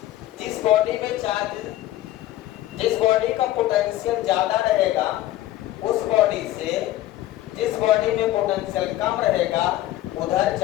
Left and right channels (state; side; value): quieter; right; 14.7 dB